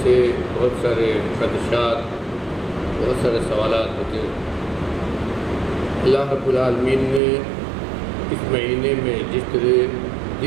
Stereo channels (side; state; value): left; drops out; at 7.2 s